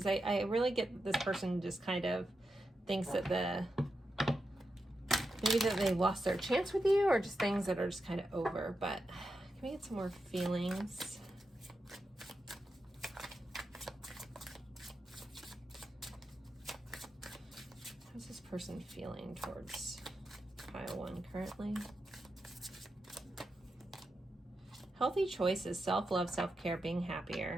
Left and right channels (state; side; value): normal; both; correlation 0.88